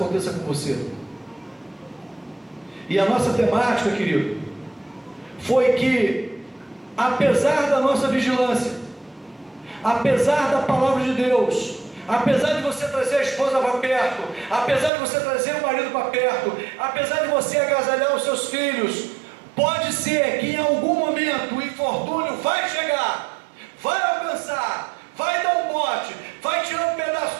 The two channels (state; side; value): drops out; left; at 14.9 s